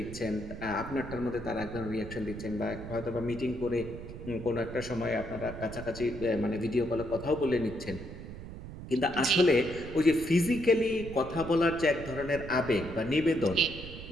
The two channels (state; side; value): noise; right; rumble, 11 dB below the sound